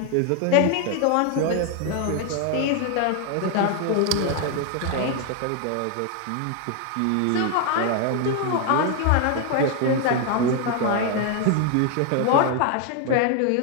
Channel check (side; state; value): both; different; correlation 0.01